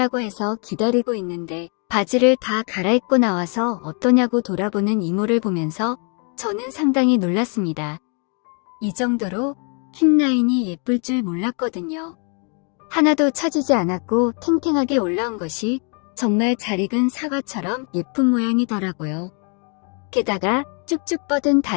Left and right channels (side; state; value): right; quieter; 38.3 dB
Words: 해서 기다리고 있는데 바지를 다 갈아입고 나와서 어떠냐고 돌아보는 이모를 보면서 저는 상당히 놀랐습니다. 이 정도로 힙라인이 예쁠 줄 몰랐거든요. 하나도 처지지 않았고 탱탱하게 올라온 것이 정말 잘 익은 사과처럼 예쁜 모양이더라고요. 게다가 쭉쭉 뻗은